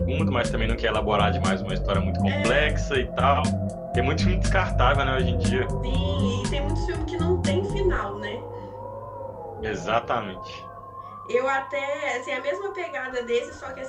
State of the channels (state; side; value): identical; both; correlation 1.00